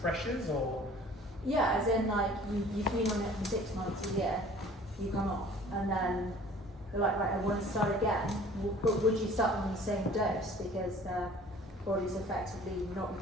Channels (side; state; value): both; normal; correlation 0.49